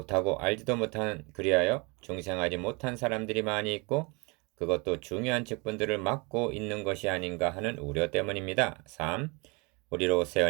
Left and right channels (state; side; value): quieter; left; 29.0 dB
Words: 알지도 못한 그리하여 중생하지 못한 사람들이 많이 있고 그것도 중요한 직분들을 맡고 있는 것이 아닌가 하는 우려 때문입니다. 3. 우리로 새